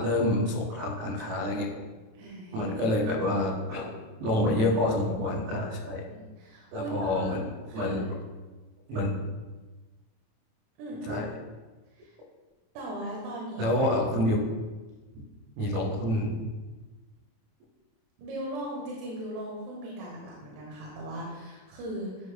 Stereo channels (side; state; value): left; late; 27 ms